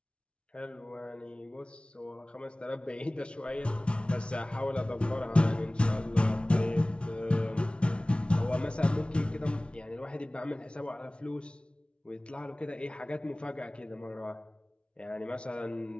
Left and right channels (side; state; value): right; late; 0.059 ms